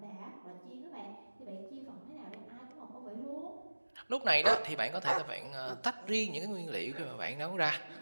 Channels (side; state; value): both; inverted; correlation -1.00